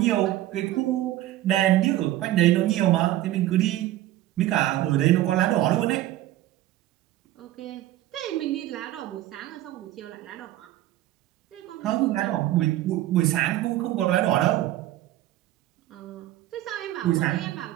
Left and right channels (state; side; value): quieter; left; 14.5 dB